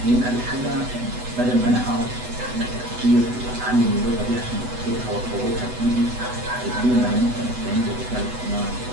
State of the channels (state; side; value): late; left; 8.0 ms